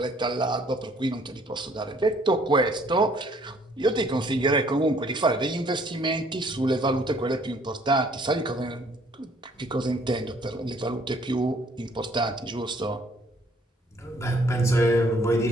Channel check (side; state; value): both; normal; correlation 0.61